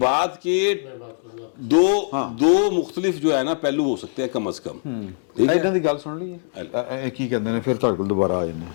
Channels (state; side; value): silent; right; 64 dB below the other